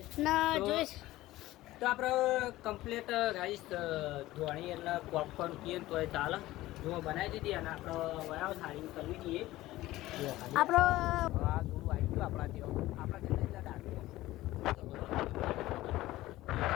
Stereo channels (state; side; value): quieter; right; 16.8 dB